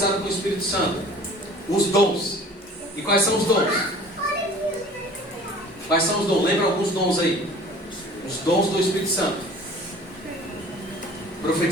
com o Espírito Santo: os dons. E quais são os dons? Quais são os dons? Lembra alguns dons aí? Os dons do Espírito Santo:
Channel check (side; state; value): both; normal; correlation 0.46